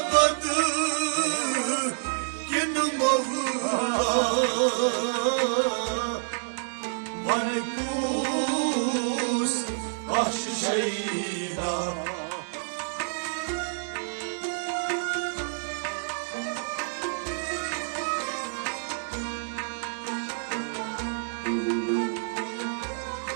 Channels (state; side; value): silent; left; 59 dB below the other